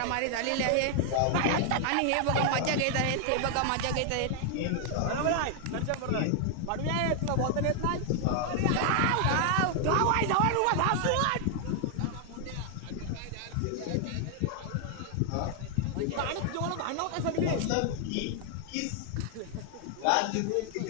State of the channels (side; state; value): both; different; correlation 0.00